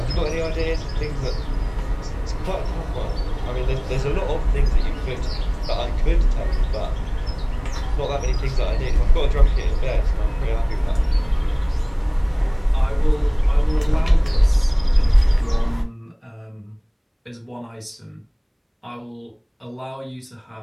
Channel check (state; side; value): identical; both; correlation 1.00